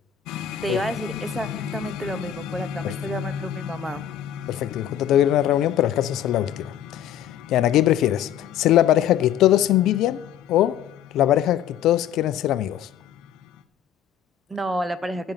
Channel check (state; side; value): quieter; right; 10.0 dB